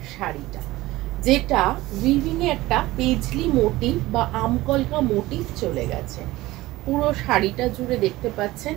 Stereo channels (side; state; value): left; quieter; 18.2 dB